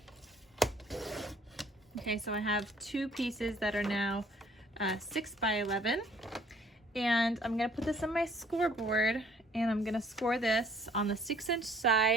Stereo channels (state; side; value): normal; both; correlation 0.59